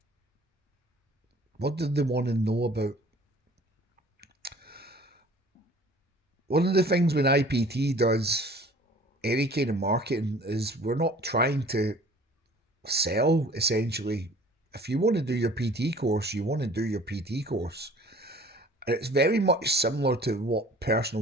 What do they want to know about? One of the things when IPT does any kind of marketing is we're not trying to sell, essentially. If you want to do your PT course, you want to do your PT course. And it's very much similar to what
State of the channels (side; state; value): both; normal; correlation 0.49